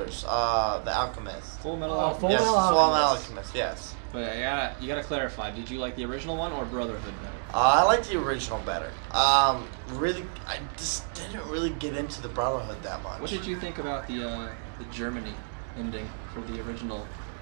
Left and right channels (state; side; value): silent; left; digital silence